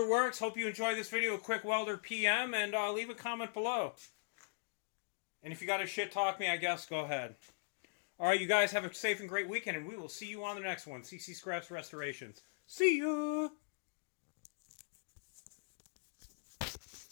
works. Hope you enjoyed this video. A quick Welder PM, and leave a comment below. And if you got to shit talk me, I guess, go ahead. All right, you guys have a safe and great weekend, and we will see you on the next one. CC Scraps Restorations. See ya!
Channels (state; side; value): silent; right; digital silence